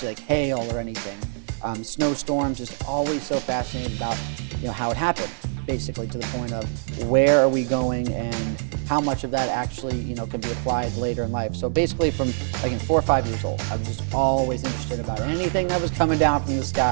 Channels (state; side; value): silent; left; digital silence